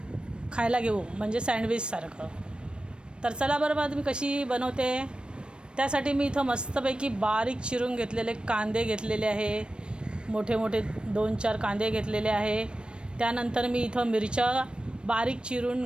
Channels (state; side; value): late; left; 0.055 ms